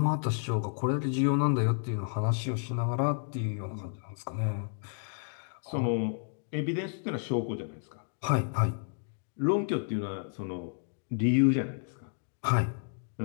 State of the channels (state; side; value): silent; right; digital silence